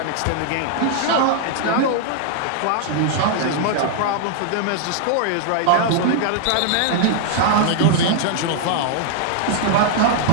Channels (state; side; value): different; both; correlation 0.00